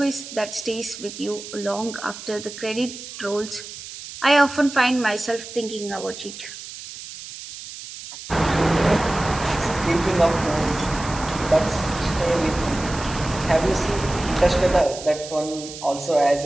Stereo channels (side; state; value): right; noise; hiss, 12 dB below the sound